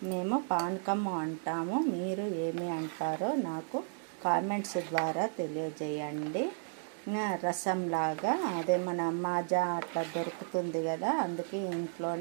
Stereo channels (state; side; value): silent; left; digital silence